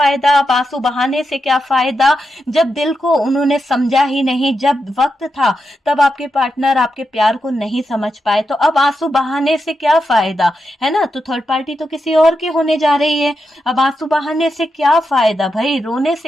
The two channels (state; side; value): normal; both; correlation 0.86